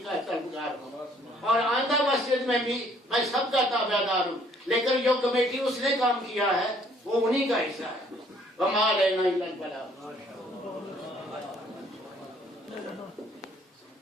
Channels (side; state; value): both; normal; correlation 0.62